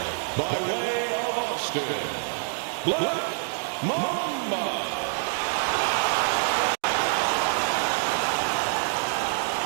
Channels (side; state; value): left; silent; digital silence